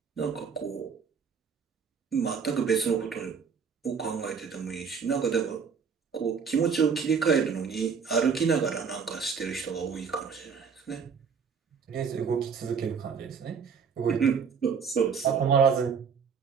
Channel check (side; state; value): left; quieter; 6.1 dB